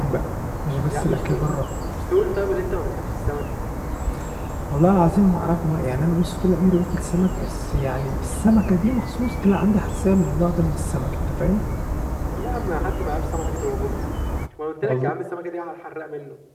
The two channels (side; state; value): both; identical; correlation 1.00